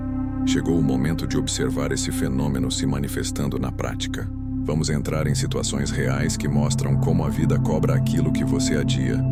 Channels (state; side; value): identical; both; correlation 1.00